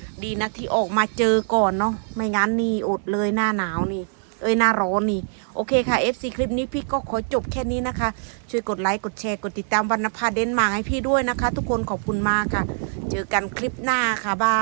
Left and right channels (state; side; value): silent; left; digital silence